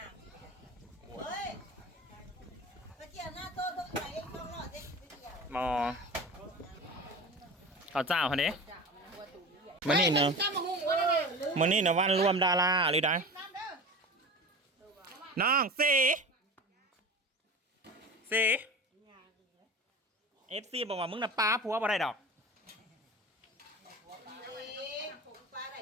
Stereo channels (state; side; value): normal; both; correlation 0.33